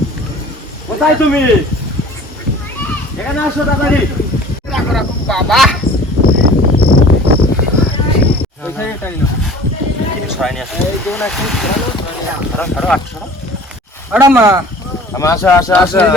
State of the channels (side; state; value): both; normal; correlation 0.46